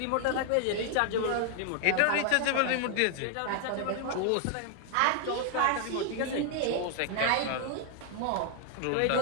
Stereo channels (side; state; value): both; different; correlation 0.00